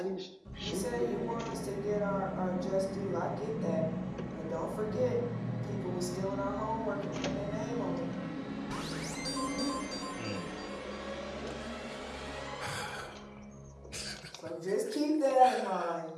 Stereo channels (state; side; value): identical; both; correlation 1.00